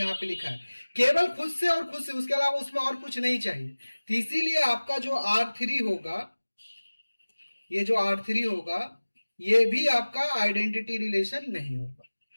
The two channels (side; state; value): both; inverted; correlation -1.00